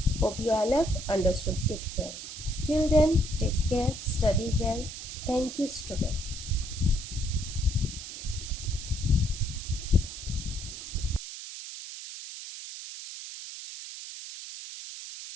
Hope you all have understood it well. Till then, take care, study well. Thank you, student.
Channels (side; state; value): right; noise; hiss, 10 dB below the sound